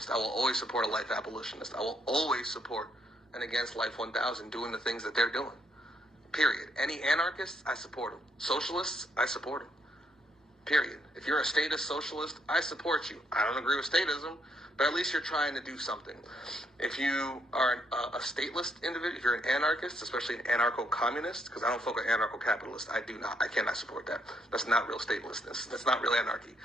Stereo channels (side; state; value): both; normal; correlation 0.74